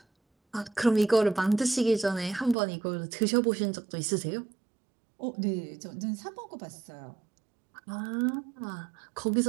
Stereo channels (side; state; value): left; drops out; at 2.6 s